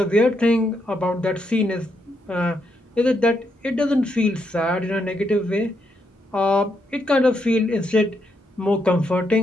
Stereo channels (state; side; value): normal; both; correlation 0.79